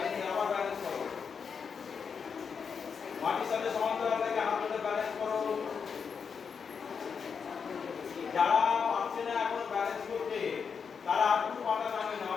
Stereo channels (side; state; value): right; quieter; 6.2 dB